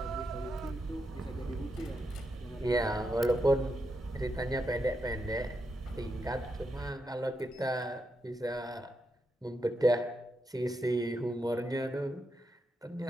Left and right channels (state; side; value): normal; both; correlation 0.84